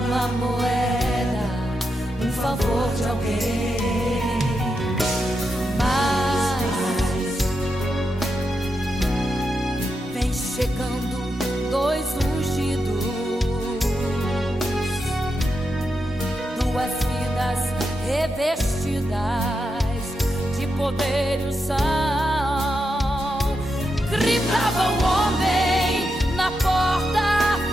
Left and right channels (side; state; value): both; normal; correlation 0.86